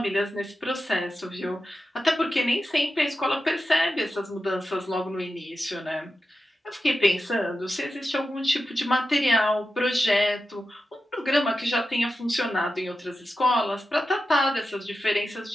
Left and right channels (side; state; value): both; normal; correlation 0.91